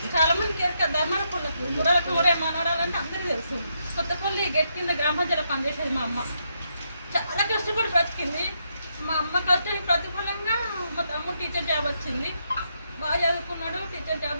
చాలామందికి ఎరక ధర్మపుల్లకు గుర్రాలకు ఊరే మనవడాలంటే అందరికీ తెలుసు. కొత్తపల్లి గెట్ కింద గ్రామ పంచాయతీలో పనిచేసేది మా అమ్మ. చాలా కష్టపడి బ్రతికింది. మా అమ్మ కష్టానికి ప్రతిఫలంగా మా తమ్ముడు టీచర్ జాబ్ వచ్చింది. బాగా చదువుకున్నాడు, టీచర్ జాబ్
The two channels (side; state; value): both; inverted; correlation -0.79